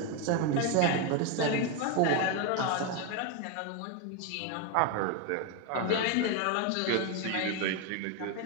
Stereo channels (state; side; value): different; both; correlation 0.02